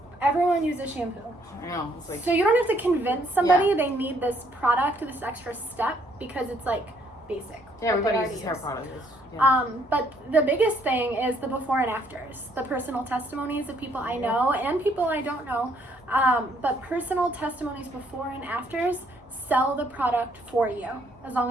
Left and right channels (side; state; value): both; normal; correlation 0.67